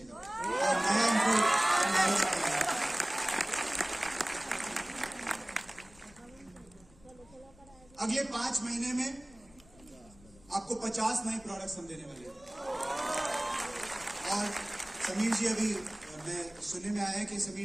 और नया एनवायरोचिप मिलेगा। अगले 5 महीने में आपको 50 नए प्रोडक्ट्स हम देने वाले हैं। और समीर जी, अभी मैं सुनने में आया है कि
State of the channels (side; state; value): left; noise; rumble, 25 dB below the sound